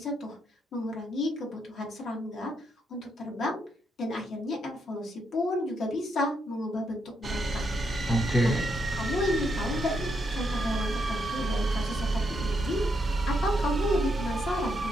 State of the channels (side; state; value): both; normal; correlation 0.79